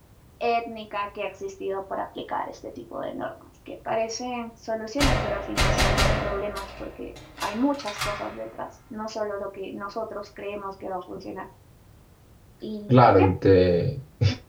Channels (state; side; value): identical; both; correlation 1.00